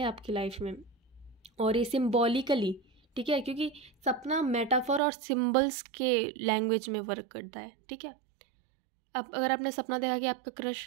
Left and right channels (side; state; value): left; drops out; at 5.0 s